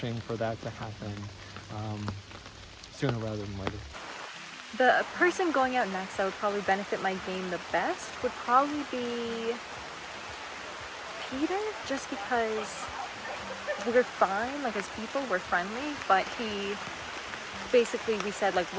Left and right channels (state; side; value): identical; both; correlation 1.00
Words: for that to happen sooner rather than later. The person going out next that would probably benefit my game the best would probably be Peter, just because we're fine, like as people, we're friendly, but he basically, we said like,